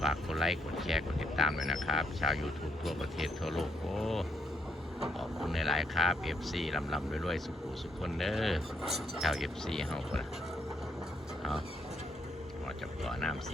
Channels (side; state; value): both; normal; correlation 0.75